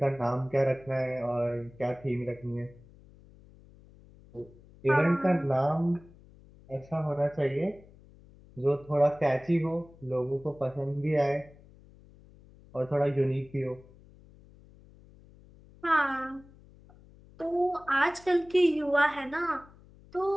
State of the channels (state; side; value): noise; left; hum, 24 dB below the sound